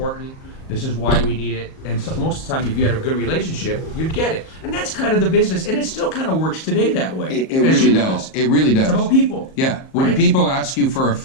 This is why we need it. And so most of the time, if you had a good relationship, you'd get it. And that's kind of the business. And it still kind of works today that way. It really does. It really does. It's about people. Yeah. When people ask you for a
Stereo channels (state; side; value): late; right; 38 ms